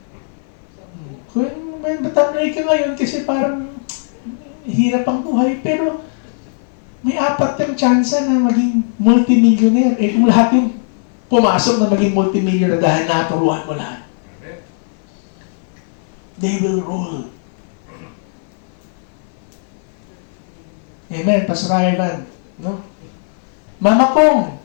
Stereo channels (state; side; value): silent; right; 55 dB below the other